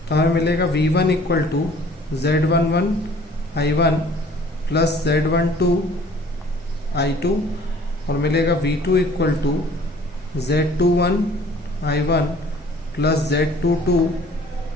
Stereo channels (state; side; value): normal; both; correlation 0.52